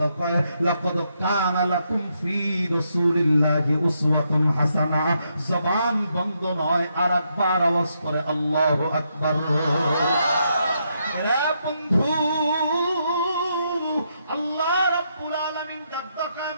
কয়, লাকাদ কানা লাকুম ফি রাসূলিল্লাহি উসওয়াতুন হাসানা। জবান বন্ধ নয়, আরেকবার আওয়াজ করে আল্লাহু আকবার। এরা বন্ধু, আল্লাহ রাব্বুল আলামিন ডাক দেয়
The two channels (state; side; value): inverted; both; correlation -0.79